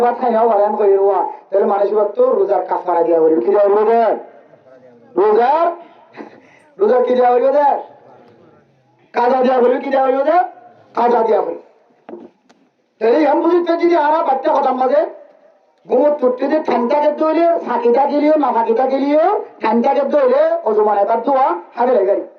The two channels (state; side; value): identical; both; correlation 1.00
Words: ভাত খাই নেওয়া ভালো এমন করে রোয়া তাহলে মানুষ তো রোজার কাফারা দিয়া বলি কি দেওয়া বলবে রোজার রোজার কি দেওয়া বলবে কাজা দেওয়া বলবে কি দেওয়া বলবে কাজা দেওয়া বলবে তাহলে এমন বুঝতে যদি আরা বাচ্চা কথা মাঝে ঘুমত চুটতে যে ঠান্ডাকে দইলে ফাঁকিটা গেলিও না ফাঁকিটা গেলিও ঠান্ডাকে দইলে অজমান এবার দোয়া হাবে গাড়ি